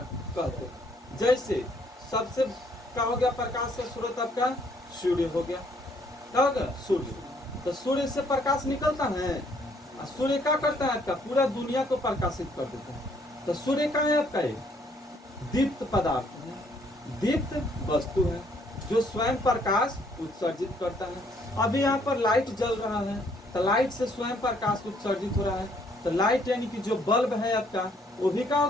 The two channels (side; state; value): both; normal; correlation 0.66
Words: कहते हैं। जैसे सबसे क्या हो गया, प्रकाश का स्रोत आपका सूर्य हो गया। क्या हो गया, सूर्य। तो सूर्य से प्रकाश निकलता है, और सूर्य क्या करता है, आपका पूरा दुनिया को प्रकाशित कर देता है। तो सूर्य का है आपका एक दीप्त पदार्थ है, दीप्त वस्तु है, जो स्वयं प्रकाश उत्सर्जित करता है। अभी यहाँ पर लाइट जल रहा है, तो लाइट से स्वयं प्रकाश उत्सर्जित हो रहा है। तो लाइट यानी कि जो बल्ब है आपका, वो भी क्या हो